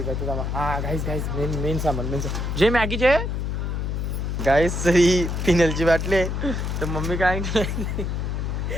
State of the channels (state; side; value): noise; left; hum, 2 dB below the sound